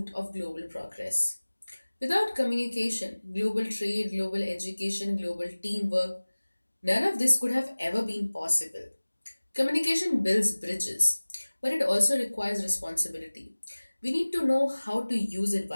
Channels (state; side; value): inverted; both; correlation -1.00